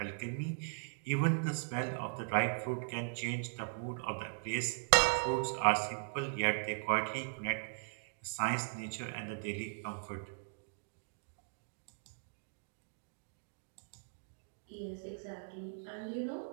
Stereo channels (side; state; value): left; silent; digital silence